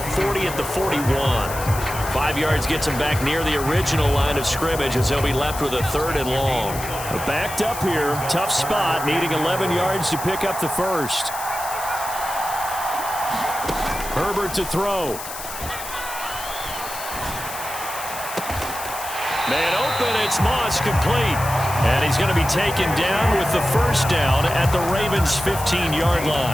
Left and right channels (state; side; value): noise; left; hiss, 10 dB below the sound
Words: 40 at the 41. 5 yards gets him back near the original line of scrimmage as they'll be left with a 3rd and long. Backed up here. Tough spot. Needing 11 yards to pick up the first. Herbert to throw. Man open, it's Moss, complete. And he's going to be taken down with the first down at the Ravens' 15-yard